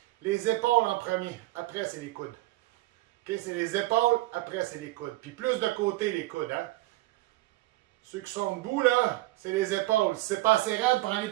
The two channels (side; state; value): left; quieter; 18.6 dB